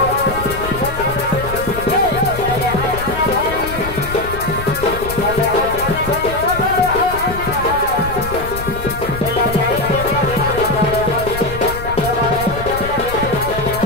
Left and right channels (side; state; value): left; noise; rumble, 9 dB below the sound